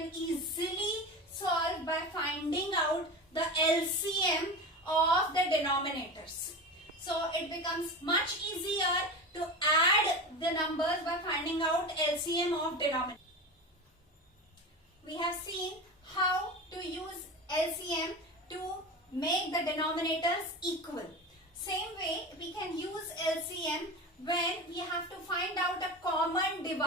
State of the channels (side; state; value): both; normal; correlation 0.27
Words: easily solve by finding out the LCM of the denominators. So it becomes much easier to add the numbers by finding out LCM of denominators. We have seen how to use LCM to make the denominators equal. Same way we can use LCM when we have to find out a common